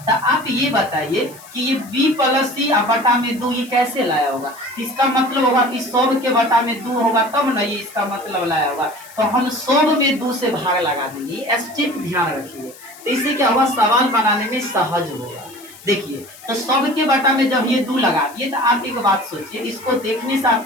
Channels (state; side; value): noise; left; hiss, 20 dB below the sound